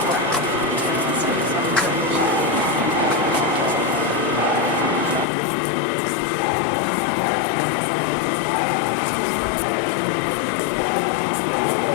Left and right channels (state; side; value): drops out; right; at 5.2 s